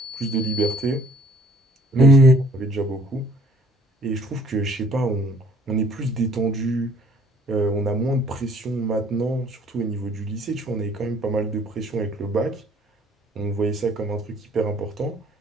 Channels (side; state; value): both; normal; correlation 0.58